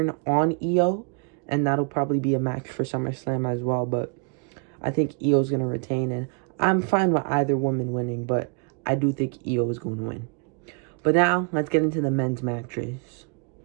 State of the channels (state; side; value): quieter; left; 37.9 dB